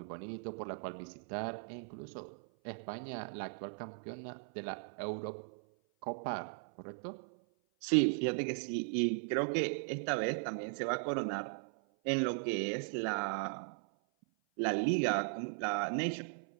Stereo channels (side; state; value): left; silent; 53 dB below the other